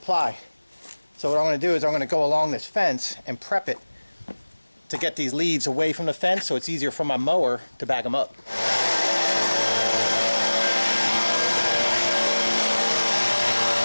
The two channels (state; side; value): inverted; both; correlation -1.00